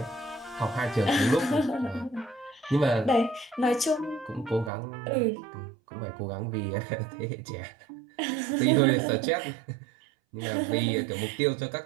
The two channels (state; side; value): drops out; left; at 4.7 s